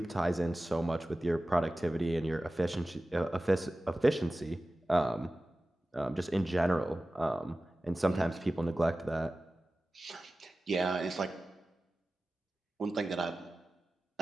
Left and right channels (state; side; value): normal; both; correlation 0.96